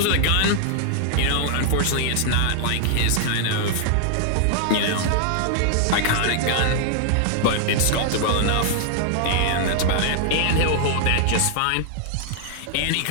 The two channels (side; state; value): both; different; correlation 0.00